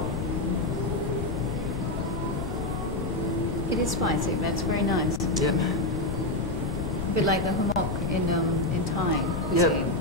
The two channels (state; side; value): noise; left; rumble, 7 dB below the sound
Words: It is spicy, but it's very nice. Yep. A bit like the humok in Thai cuisine.